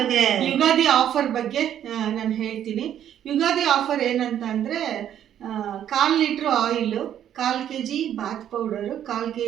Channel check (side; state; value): left; quieter; 10.3 dB